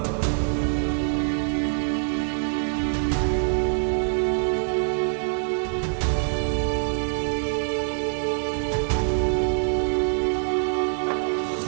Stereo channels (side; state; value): left; silent; 59 dB below the other